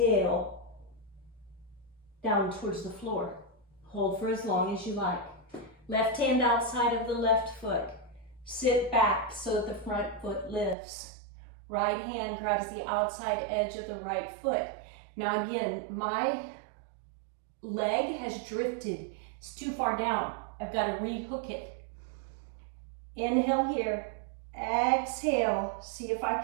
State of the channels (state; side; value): drops out; left; at 10.8 s